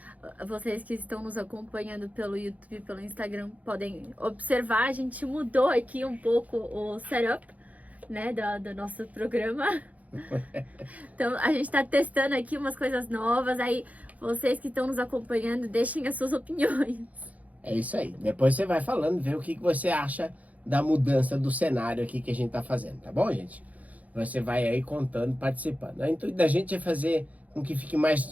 que estão nos acompanhando pelo YouTube e pelo Instagram podem observar, a gente mudou aqui um pouco o setup, né, do nosso programa. Então, a gente tá testando aqui umas coisas novas, aí vocês que estão nos acompanhando, deixem as suas opiniões. É isso aí. Depois você vai falando, vê o que você acha da mudança do cenário aqui que a gente tá fazendo, tá bom, gente? Você vai aí contando, participando. O intuito da gente é fazer com que fique mais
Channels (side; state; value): left; late; 0.073 ms